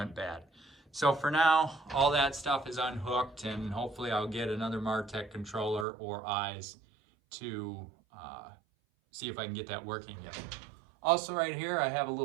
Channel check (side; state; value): left; drops out; at 5.9 s